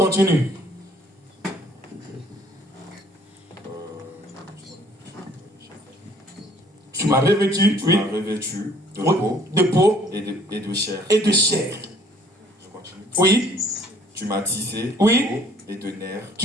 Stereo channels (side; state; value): both; normal; correlation 0.59